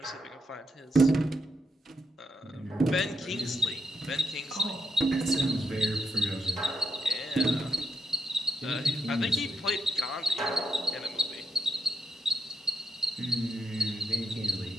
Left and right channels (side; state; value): both; normal; correlation 0.80